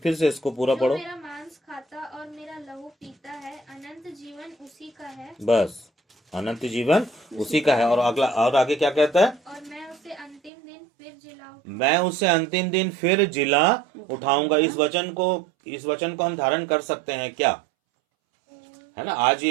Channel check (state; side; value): drops out; left; at 10.5 s